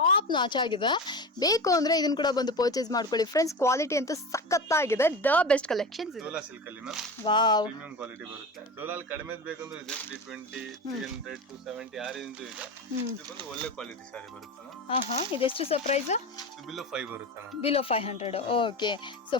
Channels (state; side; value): normal; both; correlation 0.27